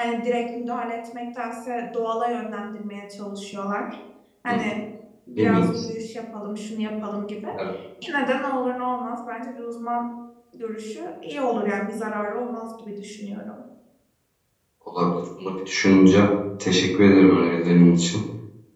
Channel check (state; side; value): identical; both; correlation 1.00